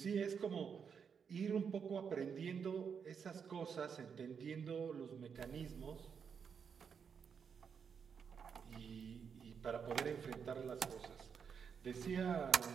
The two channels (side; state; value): left; quieter; 6.7 dB